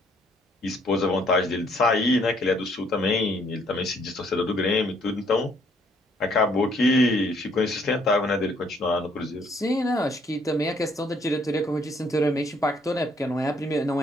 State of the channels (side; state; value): both; normal; correlation 0.65